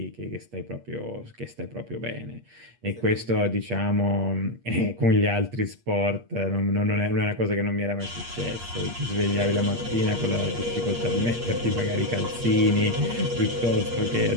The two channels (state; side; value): late; left; 8.5 ms